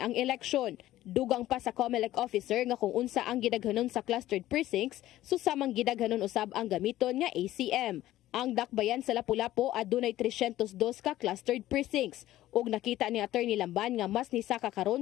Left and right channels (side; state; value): right; quieter; 14.6 dB